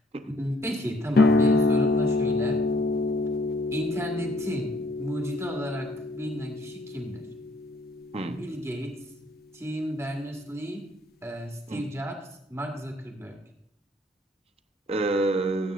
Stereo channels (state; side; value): normal; both; correlation 0.62